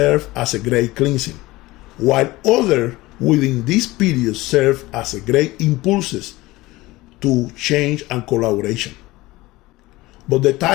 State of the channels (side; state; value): right; quieter; 19.5 dB